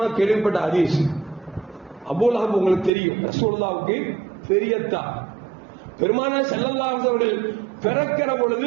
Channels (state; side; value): drops out; left; at 2.9 s